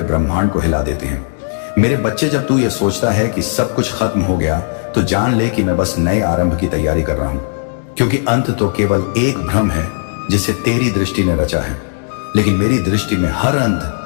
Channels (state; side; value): silent; right; digital silence